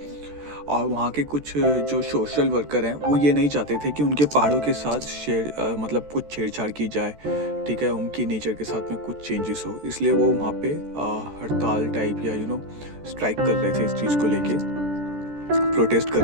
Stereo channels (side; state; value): left; late; 14 ms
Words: और वहाँ के कुछ जो सोशल वर्कर हैं वो ये नहीं चाहते थे कि उनके पहाड़ों के साथ मतलब कुछ छेड़छाड़ की जाए, ठीक है, उनकी नेचर के साथ में कुछ चेंजेस हो। इसलिए वो वहाँ पे हड़ताल टाइप या स्ट्राइक कर रहे थे, इस चीज़ को लेके प्रोटेस्ट कर